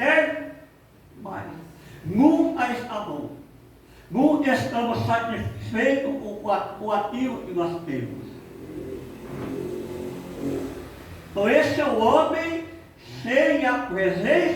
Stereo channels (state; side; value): identical; both; correlation 1.00